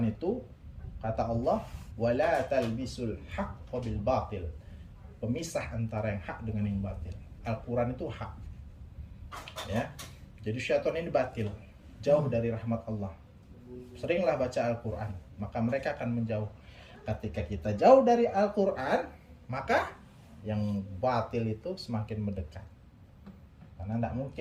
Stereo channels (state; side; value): identical; both; correlation 1.00